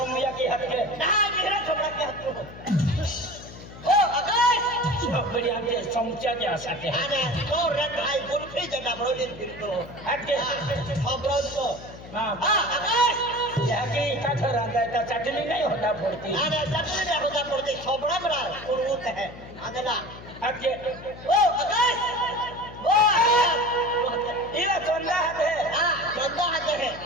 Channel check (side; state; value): left; noise; hum, 16 dB below the sound